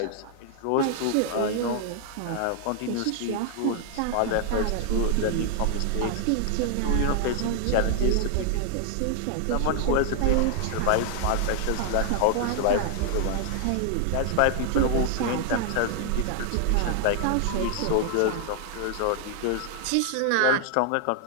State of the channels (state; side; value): different; both; correlation 0.00